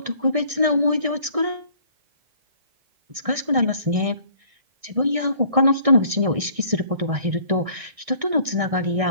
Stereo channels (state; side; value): late; left; 1.6 ms